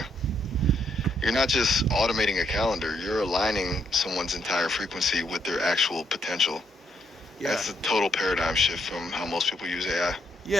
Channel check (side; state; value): both; normal; correlation 0.75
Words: You're not just automating a calendar, you're aligning someone's entire frequency with their actual potential. Yeah. That's a total paradigm shift from how most people use AI.